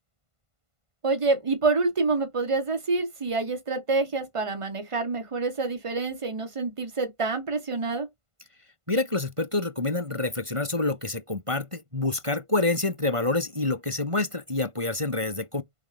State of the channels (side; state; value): left; late; 1.5 ms